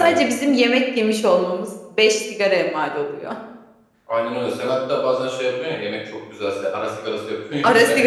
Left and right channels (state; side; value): identical; both; correlation 1.00